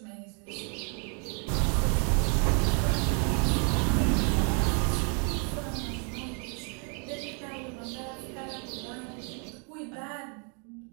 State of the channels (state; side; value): quieter; left; 38.2 dB